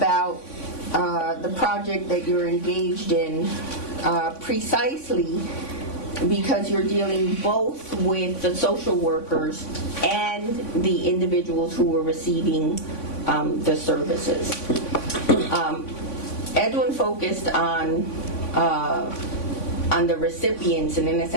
the project that you're engaged in, precisely because you're dealing both with the social workers and the individuals who were receiving the services. Edwin focused on the recipients, and in a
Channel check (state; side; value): late; right; 3.5 ms